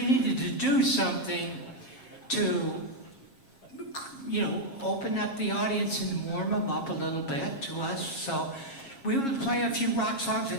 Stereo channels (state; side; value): late; right; 7.4 ms